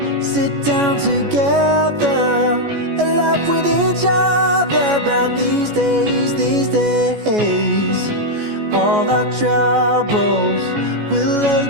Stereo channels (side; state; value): left; late; 14 ms